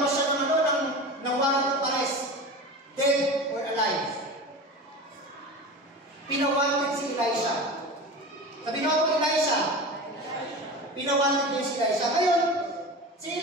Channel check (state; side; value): normal; both; correlation 0.30